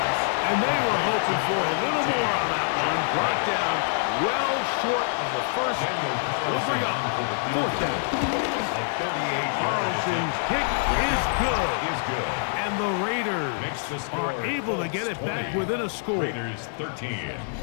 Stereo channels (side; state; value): right; silent; 61 dB below the other